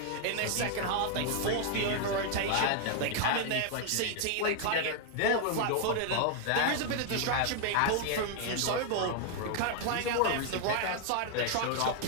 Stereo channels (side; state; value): both; different; correlation 0.00